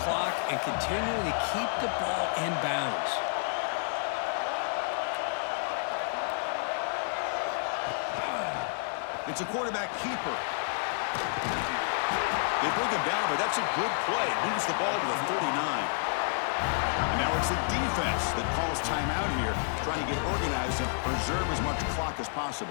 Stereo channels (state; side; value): silent; right; 58 dB below the other